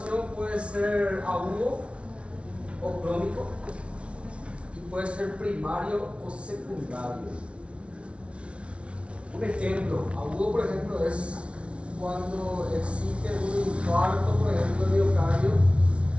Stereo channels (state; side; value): late; left; 0.060 ms